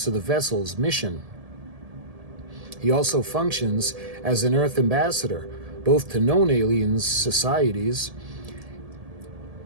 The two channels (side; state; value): left; late; 1.7 ms